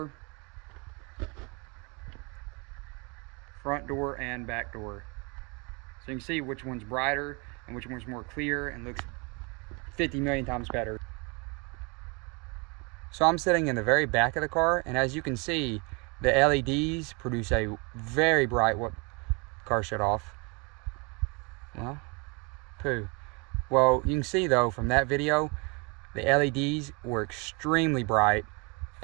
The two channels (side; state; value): left; quieter; 30.7 dB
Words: front door, and back door. So you can see which one's brighter and which one's more clear and looks 50 million times better. So I'm sitting in the very back of the car, and as you can see, the LEDs produce a very bright, what car shut off. Well, poo. Well, you can see though from that video, the LEDs were extremely bright